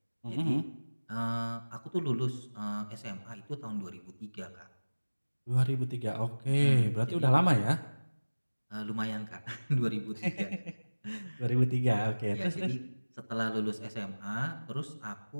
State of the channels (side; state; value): both; inverted; correlation -1.00